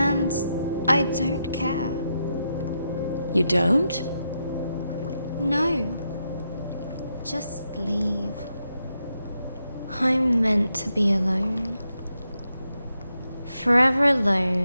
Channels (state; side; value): inverted; both; correlation -0.84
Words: I don't care. You don't? No. Just leave. I'm meant to be alone. Forever